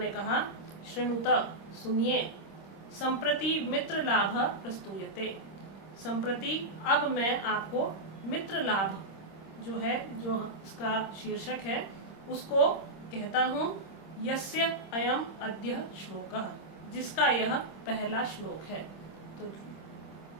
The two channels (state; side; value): late; right; 26 ms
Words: कहा। श्रृणुत, सुनिए। संप्रति मित्र लाभ प्रस्तूयते, संप्रति अब मैं आपको मित्र लाभ जो है, जो इसका शीर्षक है, उसको कहता हूँ। यस्य अयम अद्य श्लोकः, जिसका यह पहला श्लोक है। तो